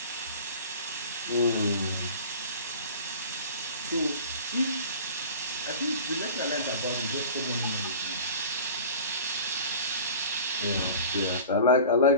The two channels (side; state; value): both; inverted; correlation -0.40